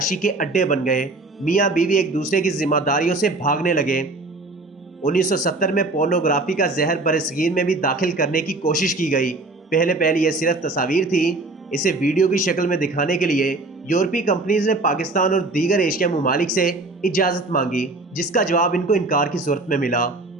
کے اڈے بن گئے۔ میاں بیوی ایک دوسرے کی ذمہ داریوں سے بھاگنے لگے۔ 1970 میں پورنوگرافی کا زہر برصغیر میں بھی داخل کرنے کی کوشش کی گئی۔ پہلے یہ صرف تصاویر تھی۔ اسے ویڈیو کی شکل میں دکھانے کے لیے یورپی کمپنیز نے پاکستان اور دیگر ایشیا ممالک سے اجازت مانگی، جس کا جواب ان کو انکار کی صورت میں ملا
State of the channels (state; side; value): quieter; left; 3.1 dB